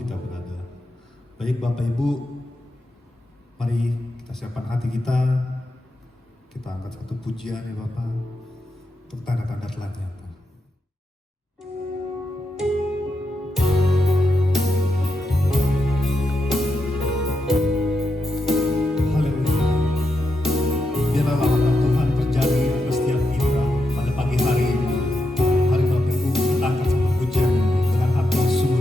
berada. Baik Bapak Ibu, mari kita siapkan hati kita. Kita angkat satu pujian ya Bapak, untuk tanda-tanda telah nyata.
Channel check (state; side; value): normal; both; correlation 0.85